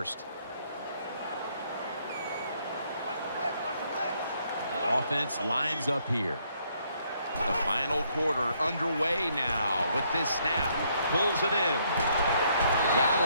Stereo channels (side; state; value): both; inverted; correlation -0.70